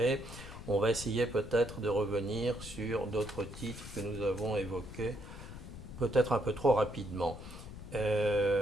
on va essayer peut-être de revenir sur d'autres titres que nous avons évoqués, peut-être un peu trop rapidement. Ou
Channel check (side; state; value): left; noise; rumble, 12 dB below the sound